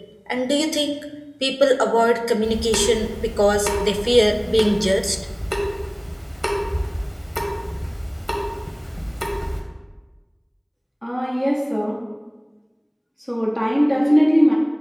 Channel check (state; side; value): identical; both; correlation 1.00